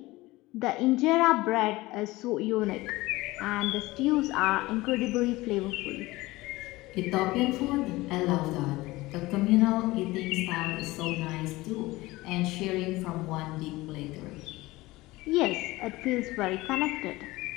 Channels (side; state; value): right; quieter; 19.8 dB